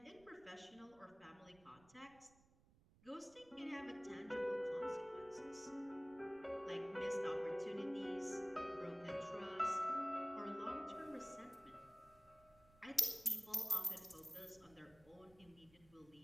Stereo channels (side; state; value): right; noise; rumble, 27 dB below the sound